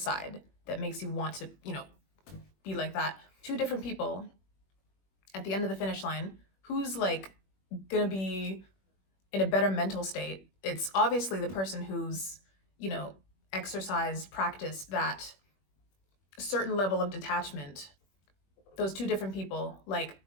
that makes you want to, you know, be like that. Two different people at the end of the finish line, who's like gonna be in a better mental state? It's obviously the person who's, you know, practiced that certain level of detachment. Those two different people, like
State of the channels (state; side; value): late; right; 21 ms